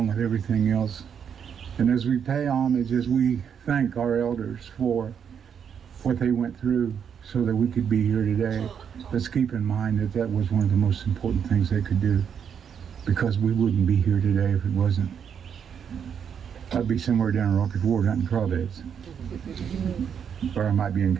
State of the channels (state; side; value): quieter; left; 7.7 dB